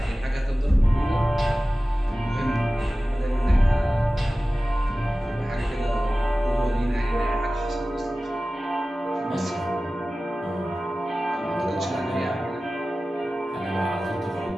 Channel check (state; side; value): normal; both; correlation 0.96